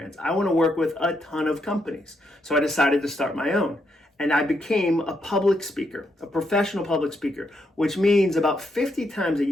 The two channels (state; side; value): normal; both; correlation 0.78